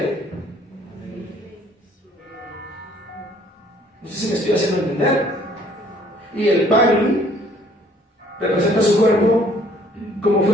No sé si me estoy haciendo entender. Y el pan representa su cuerpo como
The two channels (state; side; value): normal; both; correlation 0.59